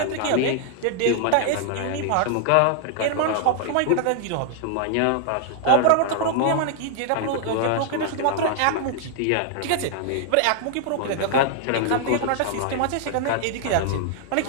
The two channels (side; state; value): both; different; correlation 0.00